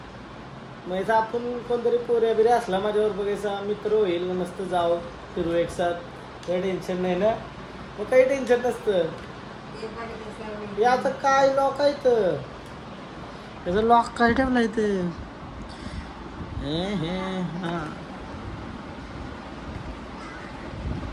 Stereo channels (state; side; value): identical; both; correlation 1.00